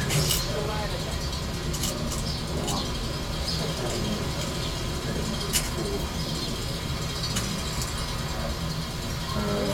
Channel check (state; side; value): identical; both; correlation 1.00